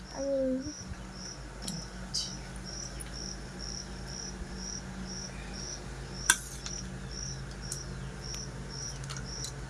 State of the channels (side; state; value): both; identical; correlation 1.00